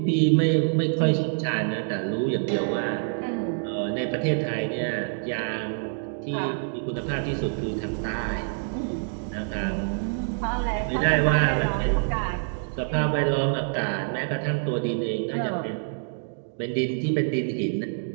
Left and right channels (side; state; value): left; silent; digital silence